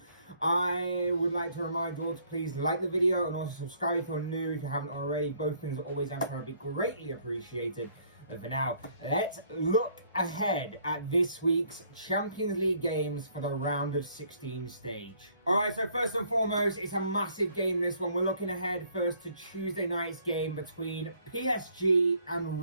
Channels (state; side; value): inverted; both; correlation -0.63